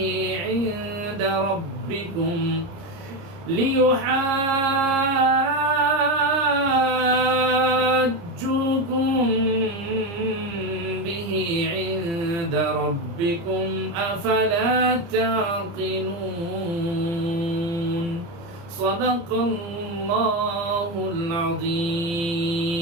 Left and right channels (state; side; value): late; left; 30 ms